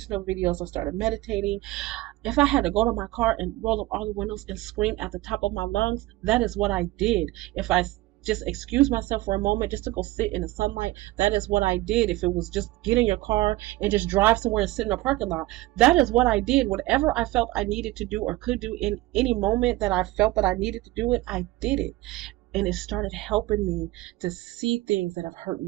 videos. I started meditating. If I had to go to my car and roll up all the windows and scream at the top of my lungs, that is what I did. If I just excuse myself for a moment just to go sit in the sunlight, that is what I did. If it was just get in your car and just drive somewhere and sit in a parking lot, that is what I did. Whatever I felt I needed to do or could do in any moment that I felt that I needed to do it, I did it. And it started helping me to see things that have hurt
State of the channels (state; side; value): quieter; left; 18.1 dB